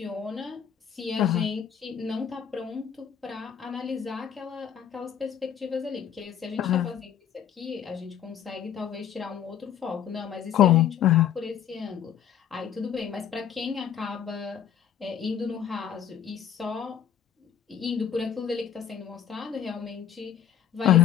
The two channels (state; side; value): quieter; right; 9.1 dB